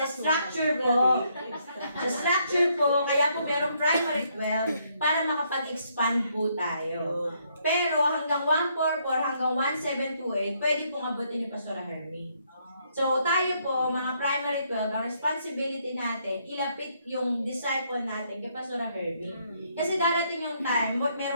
structure po, kaya po merong primary 12 para makapag-expand po tayo. Pero hanggang 144, hanggang 1728, pwede pong abutin ni Pastor Hermie. So, tayo po, mga primary 12, ang responsibility natin, ilapit yung disciple natin kay Pastor Herbie. Kasi darating yung time,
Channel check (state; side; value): inverted; both; correlation -0.72